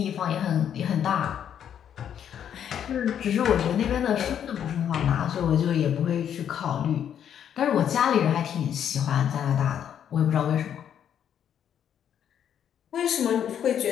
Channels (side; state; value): right; quieter; 9.2 dB